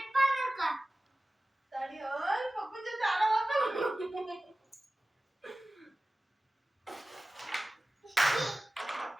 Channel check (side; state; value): both; normal; correlation 0.97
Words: ಬಾಲ್ ನೋಡ್ಕ ತಡಿಯೋ ಪಪ್ಪು ಜೊತೆ ಆಡೋವಾಗ